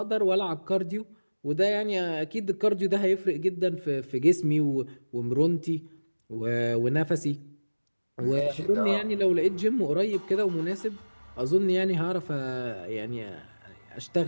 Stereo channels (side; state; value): both; inverted; correlation -1.00